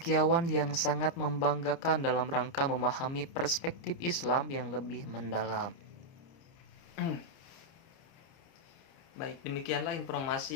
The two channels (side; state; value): right; late; 29 ms